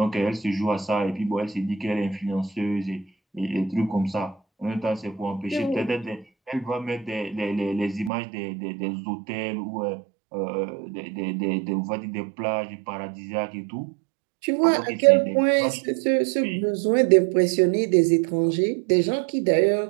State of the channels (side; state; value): left; drops out; at 8.1 s